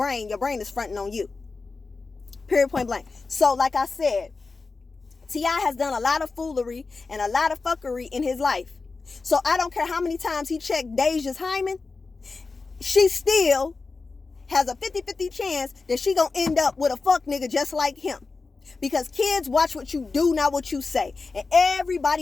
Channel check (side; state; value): right; quieter; 4.1 dB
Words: Your brain is fronting on you. Period, point blank. So like I said, T.I. has done a lot of foolery and a lot of fuckery in his life. So I don't care how many times he checked Deja's hymen, she still has a 50-50 chance that she gonna end up with a fuck nigga just like him. Because kids watch what you do, not what you say. And